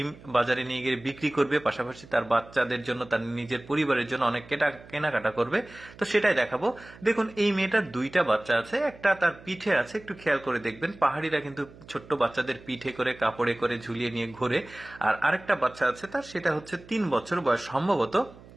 বাজারে নিয়ে গিয়ে বিক্রি করবে, পাশাপাশি তার বাচ্চাদের জন্য, তার নিজের পরিবারের জন্য অনেক কেনাকাটা করবে। তো সেটাই দেখাবো। দেখুন, এই মেয়েটার দুইটা বাচ্চা আছে, একটা তার পিঠে আছে, একটু খেয়াল করে দেখবেন। পাহাড়িরা কিন্তু ছোট্ট বাচ্চাদের পিঠে করে কাপড়ে করে ঝুলিয়ে নিয়ে ঘোরে। আর আরেকটা বাচ্চা আছে তার, সেটা হচ্ছে 3 বছর বয়স সম্ভবত।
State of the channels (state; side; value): noise; right; hum, 21 dB below the sound